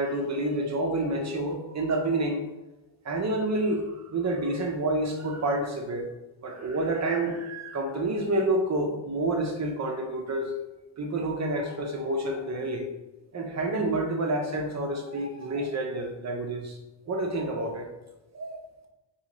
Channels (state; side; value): normal; both; correlation -0.11